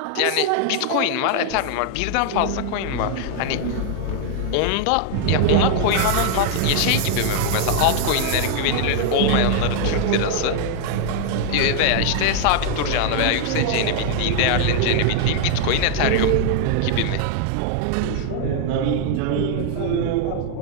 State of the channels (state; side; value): different; both; correlation 0.00